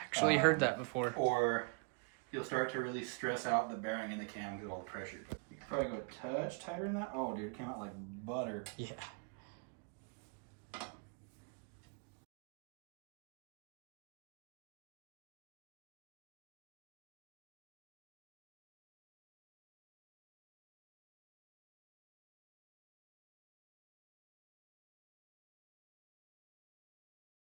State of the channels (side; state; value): left; quieter; 37.4 dB